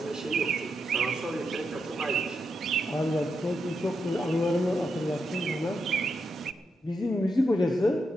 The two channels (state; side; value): normal; both; correlation 0.84